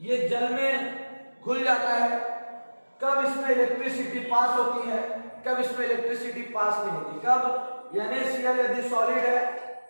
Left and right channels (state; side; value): inverted; both; correlation -1.00